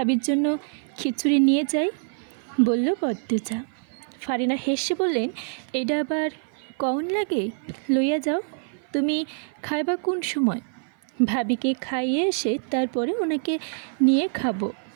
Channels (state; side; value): silent; left; 56 dB below the other